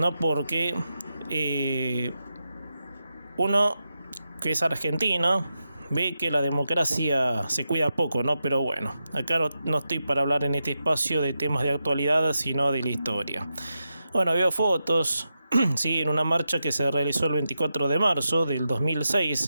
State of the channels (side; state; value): both; inverted; correlation -0.88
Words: Porque uno que es argentino ve que la democracia se cuida poco, ¿no? Pero bueno, acá no estoy para hablar en este espacio de temas de actualidad, sino de la historia. Bueno, veo fotos, sí, en una marcha que se realizó el 24 de marzo del